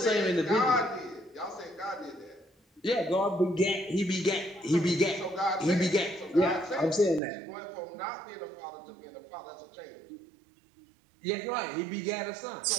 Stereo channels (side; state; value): left; drops out; at 7.2 s